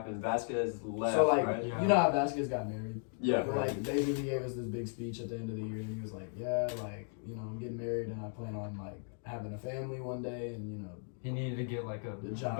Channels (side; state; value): right; silent; 54 dB below the other